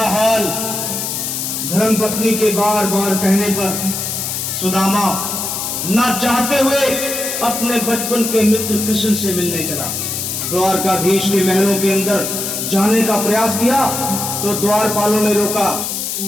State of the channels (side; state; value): left; noise; hiss, 3 dB below the sound